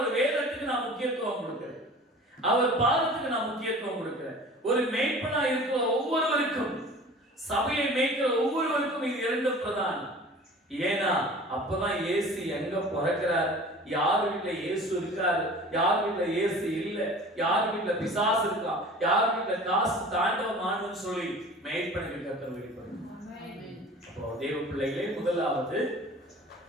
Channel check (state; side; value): normal; both; correlation 0.42